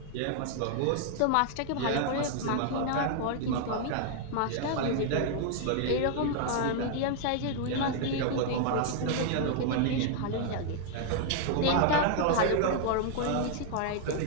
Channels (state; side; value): different; both; correlation 0.00